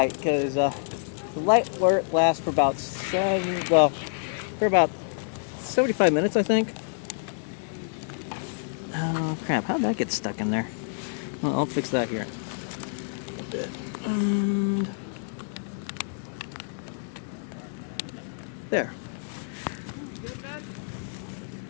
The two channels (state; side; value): silent; right; 60 dB below the other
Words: because the light lasts for about 75 minutes, I think. Oh crap! How did that get stuck in there? Well, I'll fix that here. And there.